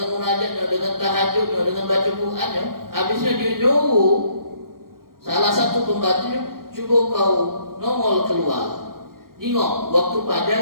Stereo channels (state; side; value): late; left; 0.92 ms